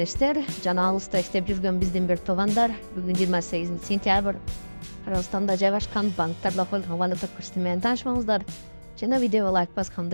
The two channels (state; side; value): inverted; both; correlation -1.00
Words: Canalısda işte bir gün bizden bir tovanдар. Bugün 28 sentyabr. Kırgızstanda жайгашкан банктарда колдонгон валюта курсу менен таанышмаңыздар. Жана видеого лайк